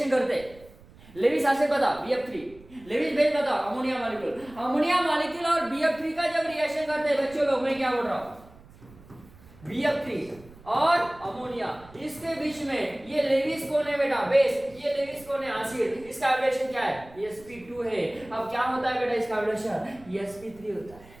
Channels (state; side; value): noise; right; rumble, 23 dB below the sound